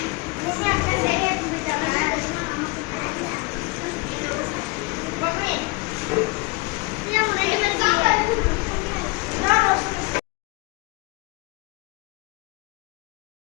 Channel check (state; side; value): quieter; right; 26.0 dB